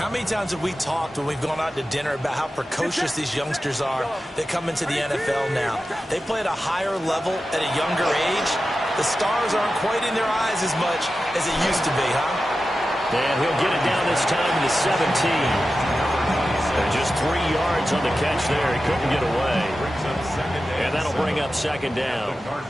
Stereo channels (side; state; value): both; normal; correlation 0.93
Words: many times have we talked when we've gone out to dinner about how precocious these youngsters are that come into the NFL now? They play at a higher level at a younger age. The stars aren't quite in their eyes as much as it used to be, huh? And he'll get it down this time to 17. And just 3 yards on the catch there. He couldn't get away. And that'll bring up second down. The